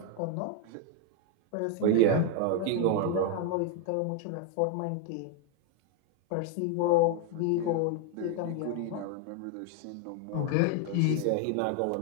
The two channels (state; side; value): different; both; correlation 0.01